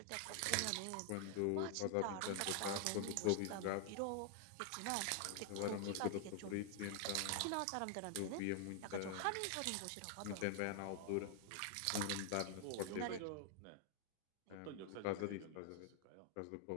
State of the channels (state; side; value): different; both; correlation 0.00